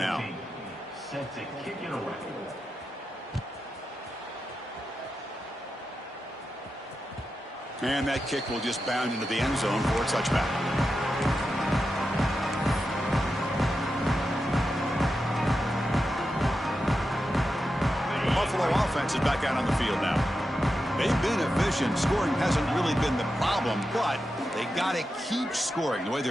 Set to kick it away. And that kick will just bound into the end zone for a touchback. The Buffalo offense is back out on the field now. They've been efficient. Scoring hasn't really been the problem, but they got to keep scoring the way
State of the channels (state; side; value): normal; both; correlation 0.89